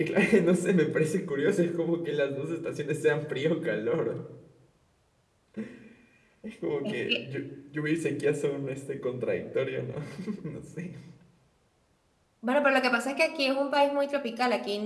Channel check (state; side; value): identical; both; correlation 1.00